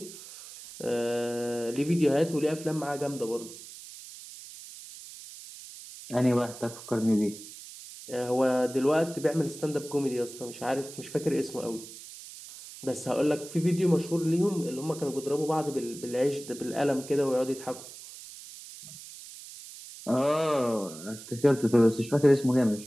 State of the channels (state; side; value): noise; right; hiss, 15 dB below the sound